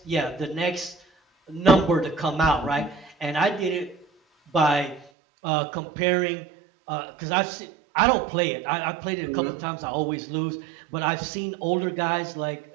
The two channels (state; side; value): drops out; left; at 5.1 s